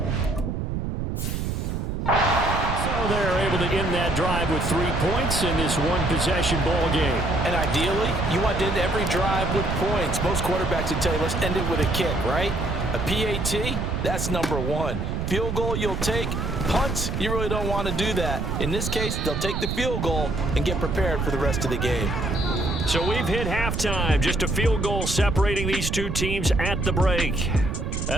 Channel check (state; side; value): noise; right; rumble, 2 dB below the sound